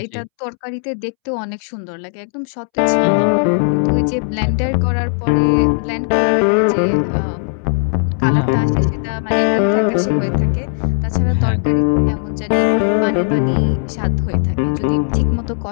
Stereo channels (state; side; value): silent; right; 68 dB below the other